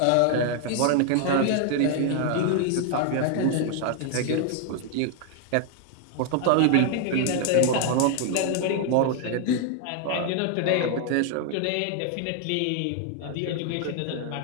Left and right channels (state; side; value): different; both; correlation 0.00